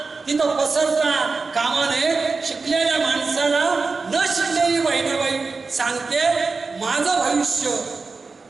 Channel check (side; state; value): left; quieter; 4.3 dB